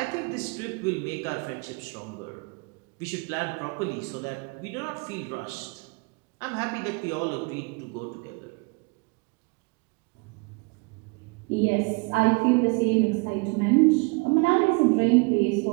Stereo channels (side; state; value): left; quieter; 29.5 dB